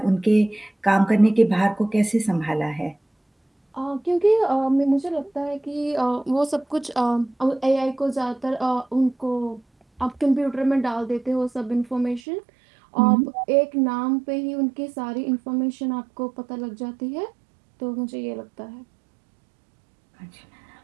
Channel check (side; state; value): left; drops out; at 12.2 s